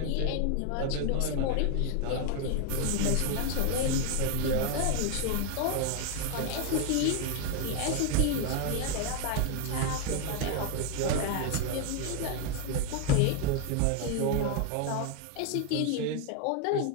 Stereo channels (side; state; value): both; different; correlation 0.01